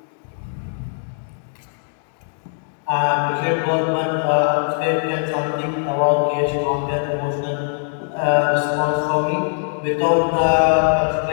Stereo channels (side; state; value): right; silent; digital silence